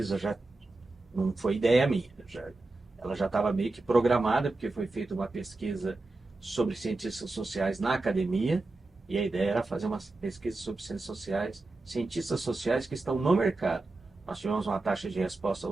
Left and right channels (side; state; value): left; quieter; 3.2 dB